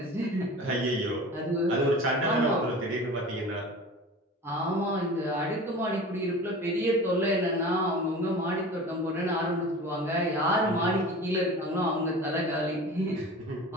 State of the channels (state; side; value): normal; both; correlation 0.37